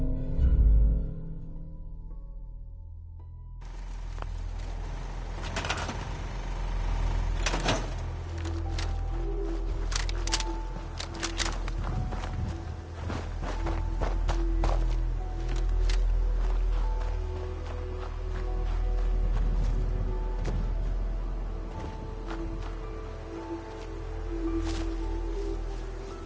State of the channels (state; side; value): identical; both; correlation 1.00